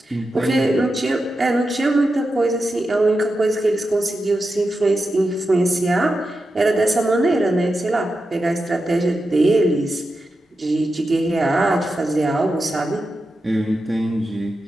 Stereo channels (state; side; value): normal; both; correlation 0.90